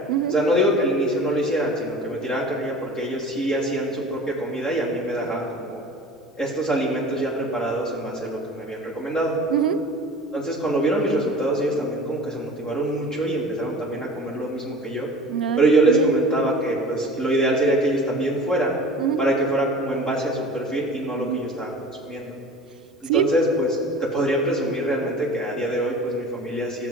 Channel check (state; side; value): normal; both; correlation 0.40